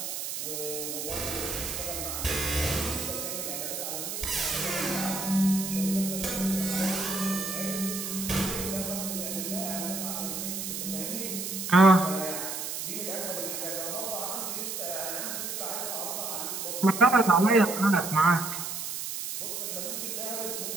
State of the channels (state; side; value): noise; right; hiss, 5 dB below the sound